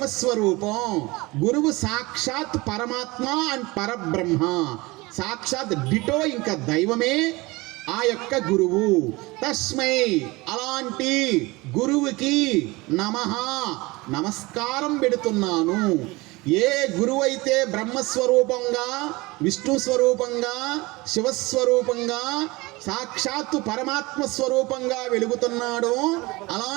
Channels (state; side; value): quieter; left; 22.8 dB